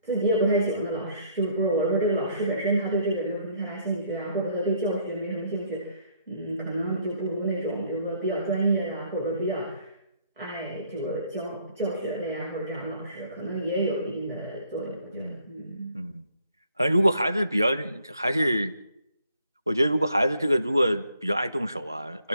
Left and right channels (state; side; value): inverted; both; correlation -0.65